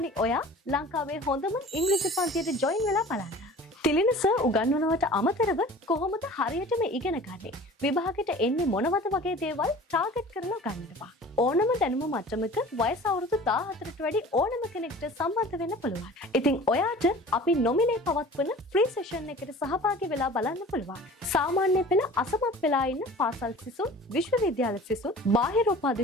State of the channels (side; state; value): both; normal; correlation 0.43